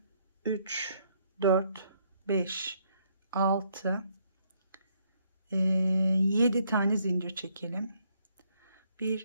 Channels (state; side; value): inverted; both; correlation -0.71